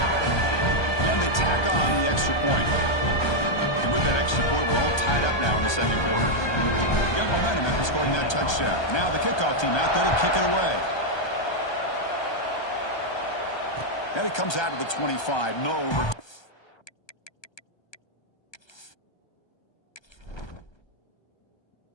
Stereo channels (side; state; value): right; late; 1.2 ms